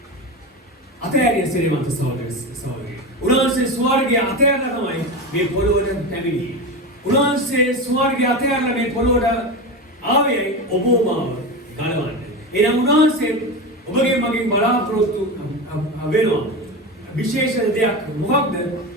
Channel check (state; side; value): normal; both; correlation 0.22